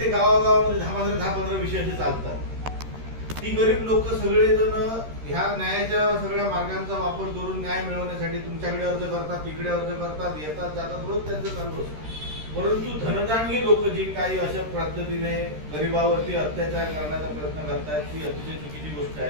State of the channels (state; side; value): late; left; 13 ms